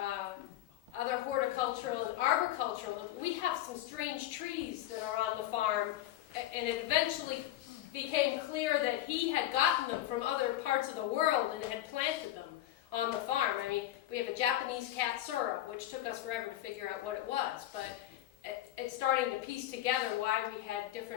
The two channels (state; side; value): quieter; right; 13.7 dB